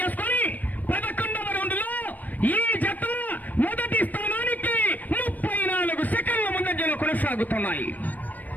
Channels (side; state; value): right; late; 0.082 ms